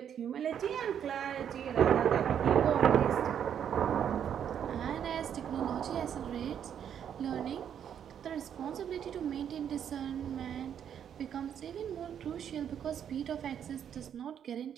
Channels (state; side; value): quieter; left; 8.8 dB